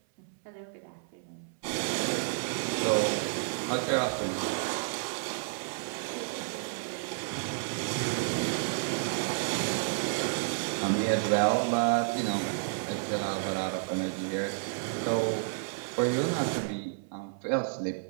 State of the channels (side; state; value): left; silent; 57 dB below the other